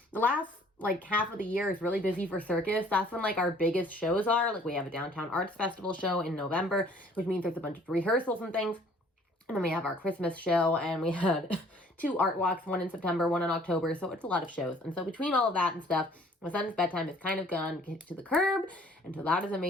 last like half of the year is really busy for circus. That's when like our biggest shows are. Like we have a downtown arts festival show in November, which means there's a bunch of rehearsals and things. And then we have our Christmas show, and we had 2 art walks, one in September, one in October. So it's a lot of shows. And so between all of that and stuff, my son's bedtime is kind of gone to the curb. And so that is a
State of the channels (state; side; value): normal; both; correlation 0.57